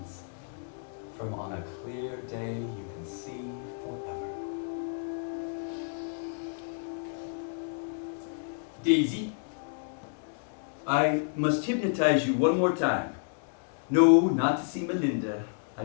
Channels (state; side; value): silent; right; digital silence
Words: from On a Clear Day You Can See Forever. Daisy, I must hypnotize you one more time. No, not to see Melinda, I